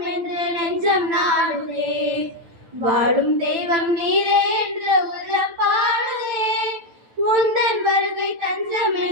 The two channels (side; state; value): left; late; 9.4 ms